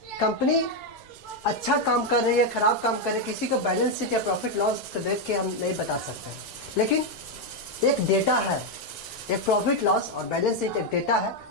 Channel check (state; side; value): normal; both; correlation 0.04